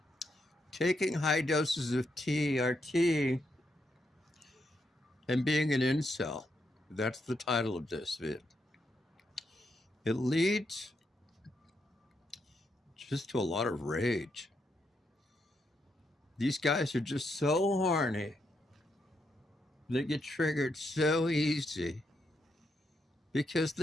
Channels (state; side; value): normal; both; correlation 0.80